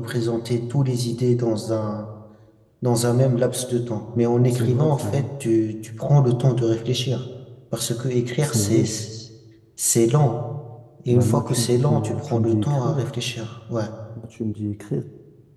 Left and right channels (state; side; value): identical; both; correlation 1.00